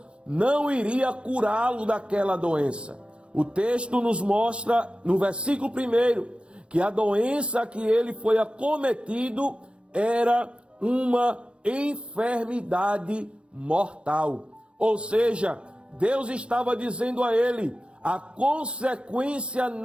não iria curá-lo daquela doença. O texto nos mostra, no versículo 1, que a doença que ele foi acometido era uma enfermidade mortal. Ou seja, Deus estava dizendo a ele: a consequência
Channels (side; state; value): left; late; 0.059 ms